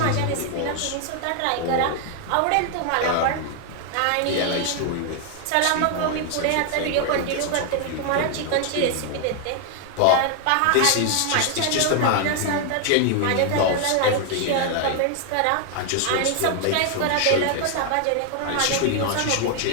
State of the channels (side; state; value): both; different; correlation 0.00